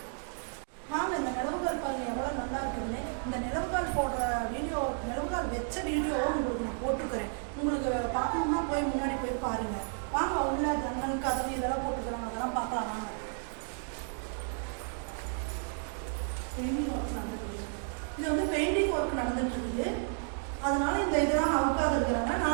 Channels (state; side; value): silent; left; 56 dB below the other